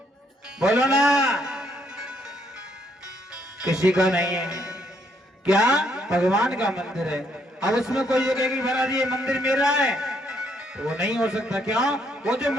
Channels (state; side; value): normal; both; correlation 0.72